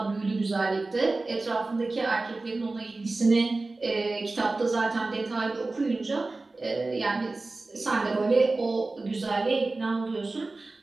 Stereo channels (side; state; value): left; quieter; 3.3 dB